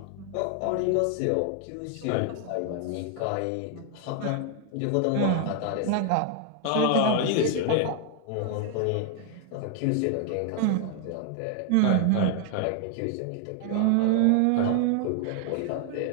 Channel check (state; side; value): different; both; correlation 0.00